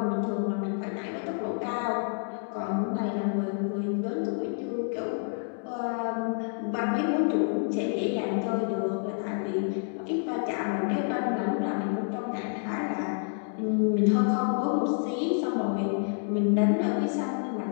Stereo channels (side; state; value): right; silent; 59 dB below the other